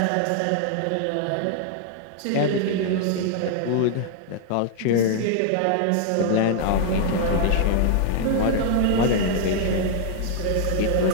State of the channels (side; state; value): both; different; correlation 0.00